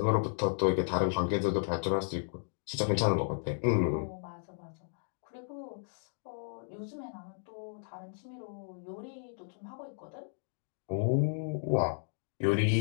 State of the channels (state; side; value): silent; right; digital silence